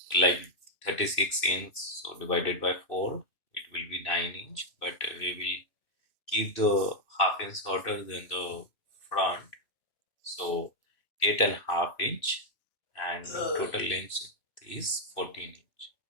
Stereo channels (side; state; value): right; late; 2.6 ms